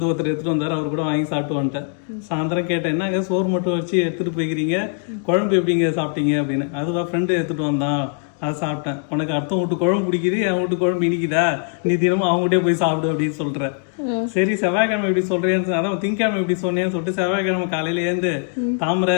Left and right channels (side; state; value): right; silent; 58 dB below the other